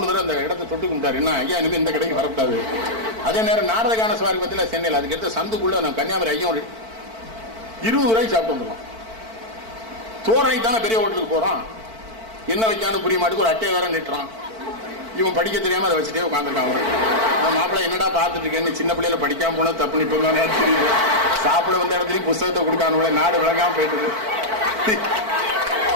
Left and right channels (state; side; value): late; left; 4.5 ms